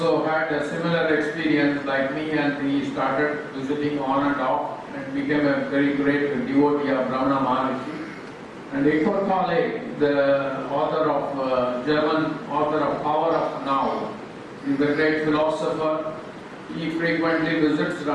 had a similar experience like me, and he started visiting on and off and became a very great devotee of Ramana Maharshi. And Eckhart Tolle, the author of German author of Power of Now, is a great philosopher. He frequently visits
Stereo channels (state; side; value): identical; both; correlation 1.00